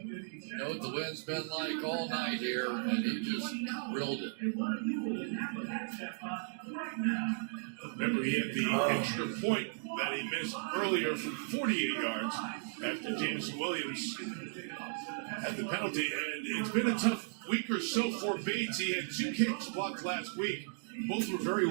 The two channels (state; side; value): silent; left; digital silence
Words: You know what the wind's been like all night here, and he just drilled it. Remember, he had the extra point that he missed earlier from 48 yards after Jameson Williams had the penalty. And it's been a tough week or so for Bates. He had 2 kicks blocked last week. Both were very